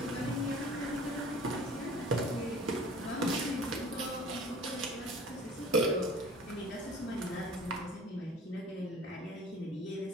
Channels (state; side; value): normal; both; correlation 0.45